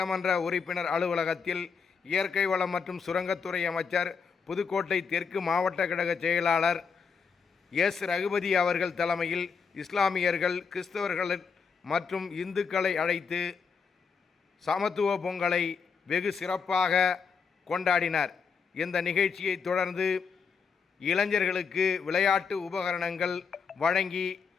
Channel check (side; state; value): right; quieter; 5.8 dB